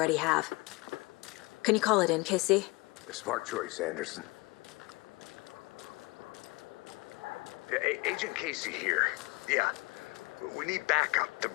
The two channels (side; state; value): right; quieter; 24.9 dB